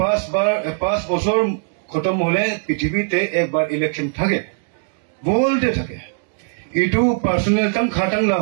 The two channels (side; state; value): left; silent; 58 dB below the other